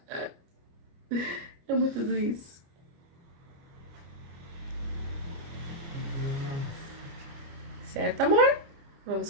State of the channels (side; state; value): left; late; 29 ms